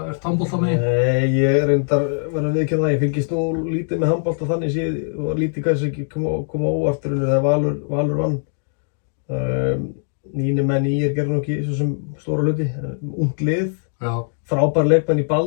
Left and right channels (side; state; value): right; silent; digital silence